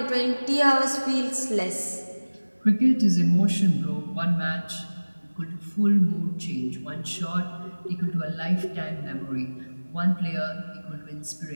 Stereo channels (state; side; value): inverted; both; correlation -1.00